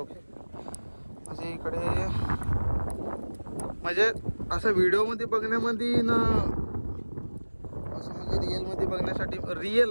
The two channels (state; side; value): inverted; both; correlation -1.00